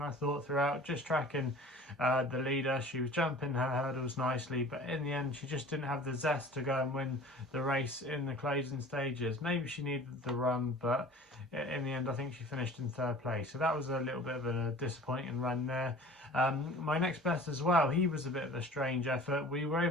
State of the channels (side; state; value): both; normal; correlation 0.44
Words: thought throughout, just tracking the leader. She was jumping her hurdles nicely, but in the end she just didn't have the zest to go and win the race in the closing stages. Maybe she needed the run, but in the end I think she finished in third place, so that was a little bit of a disappointing run there. My next bet as well, he was a bit of a strange effort. We were